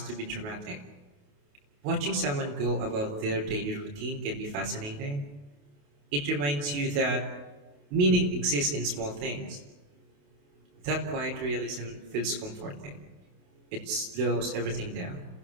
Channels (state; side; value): late; left; 28 ms